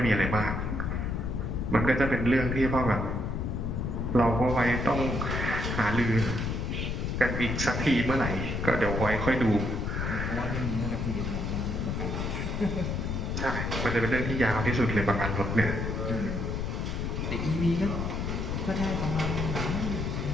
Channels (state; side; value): noise; left; rumble, 2 dB below the sound